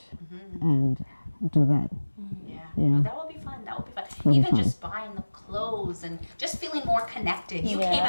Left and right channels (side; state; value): both; inverted; correlation -1.00